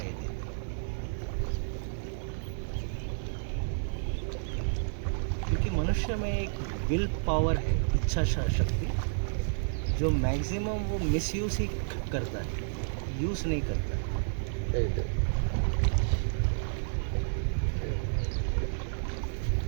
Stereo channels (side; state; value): left; silent; 57 dB below the other